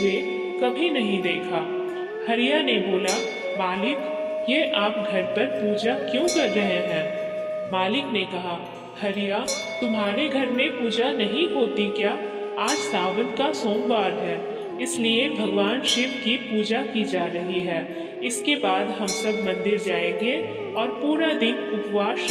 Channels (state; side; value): identical; both; correlation 1.00